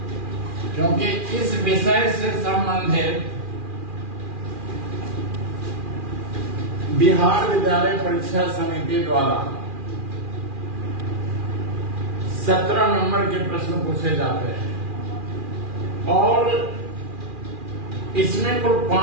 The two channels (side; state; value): left; late; 2.4 ms